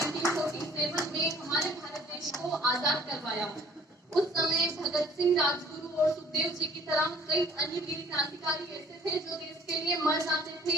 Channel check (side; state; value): both; normal; correlation 0.55